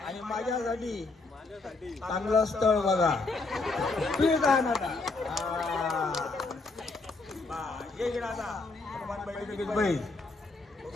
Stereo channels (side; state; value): right; quieter; 3.6 dB